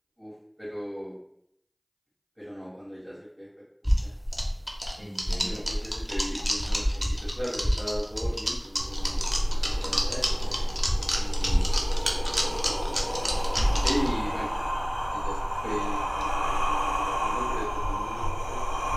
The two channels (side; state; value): both; identical; correlation 1.00